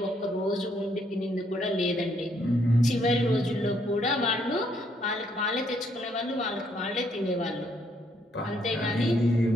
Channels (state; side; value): normal; both; correlation 0.71